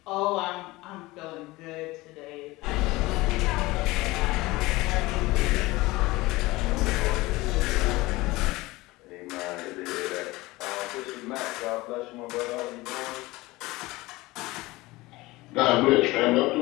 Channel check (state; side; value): quieter; right; 20.5 dB